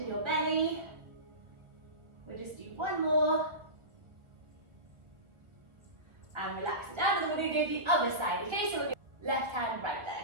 in your belly. We'll just do one more. And relax it down, and then we're going to go to the other side, okay? So we'll go left hand, right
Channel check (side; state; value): left; late; 1.6 ms